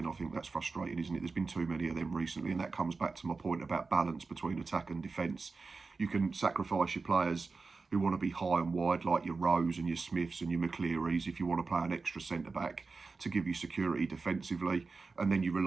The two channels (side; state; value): left; quieter; 4.2 dB